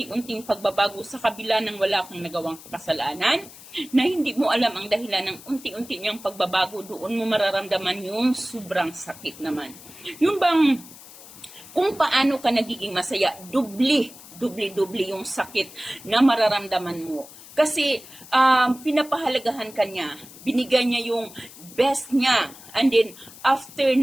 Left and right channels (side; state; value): left; noise; hiss, 18 dB below the sound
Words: pagbabago sa kabila ng wala kang nagawang kasalanan, na hindi mo alam ang dahilan ng unti-unti niyang pagbabago, doon mo mararamdaman yung sobrang sakit naman. Yung bang, kung paano ka nagiging masaya, dubli yung sakit na mararamdaman mo. Kasi pinapahalagahan ka niya, binigay niya yung best niya, and then after